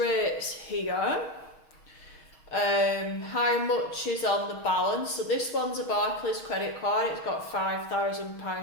here, how much is on the balance. So this one's a Barclays credit card, it's got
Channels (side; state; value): right; late; 6.4 ms